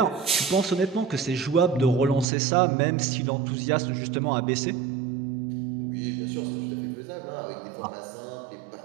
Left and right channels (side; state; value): left; drops out; at 2.2 s